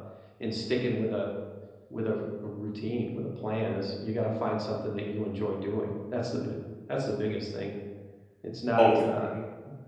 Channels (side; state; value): both; identical; correlation 1.00